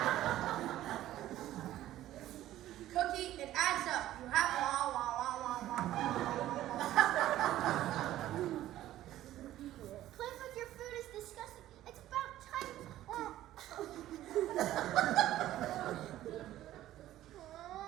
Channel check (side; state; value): left; quieter; 13.9 dB